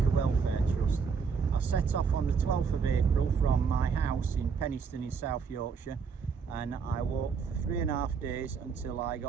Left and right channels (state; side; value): quieter; left; 5.8 dB